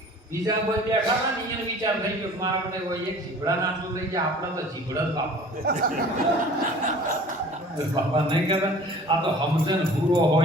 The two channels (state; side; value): normal; both; correlation 0.47